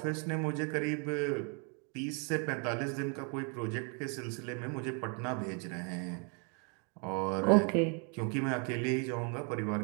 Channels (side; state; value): left; quieter; 37.6 dB